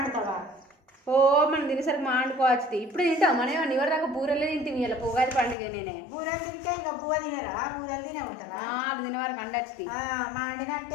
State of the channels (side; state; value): right; drops out; at 5.6 s